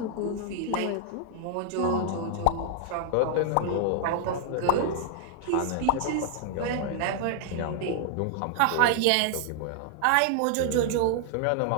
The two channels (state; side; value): different; both; correlation 0.00